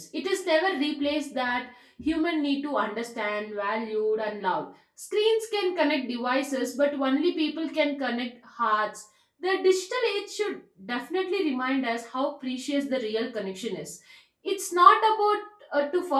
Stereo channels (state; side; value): identical; both; correlation 1.00